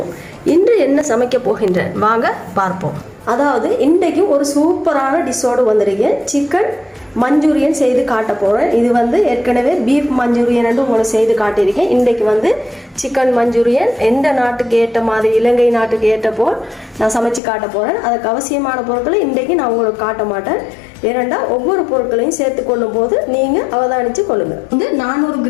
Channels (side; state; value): right; drops out; at 17.4 s